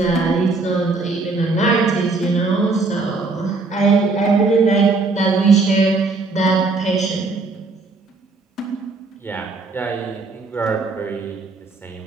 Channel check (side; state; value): left; quieter; 3.7 dB